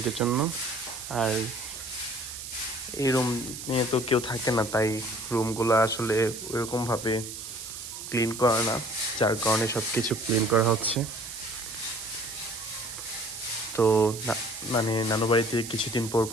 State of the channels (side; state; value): right; noise; hiss, 9 dB below the sound